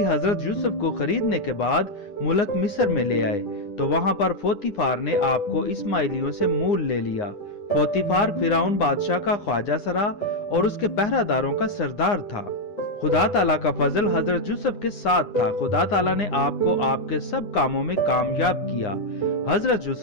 हजरत यूसुफ को खरीदने के बाद मुल्क मिस्र में ले आए, तो वहां पर पोतीफार ने आपको इस्माइलियों से मूल ले लिया। पोतीफार फिरौन बादशाह का ख्वाजा सरा और उसके पहरादारों का सरदार था। खुदा ताला का फजल हजरत यूसुफ के साथ था। खुदा ताला ने आपको आपके सब कामों में कामयाब किया। हजरत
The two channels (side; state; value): right; late; 9.8 ms